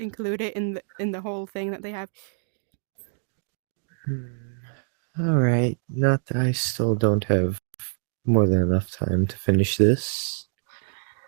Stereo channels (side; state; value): left; silent; digital silence